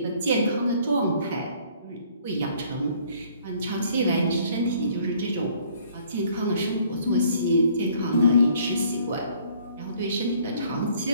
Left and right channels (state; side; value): inverted; both; correlation -0.60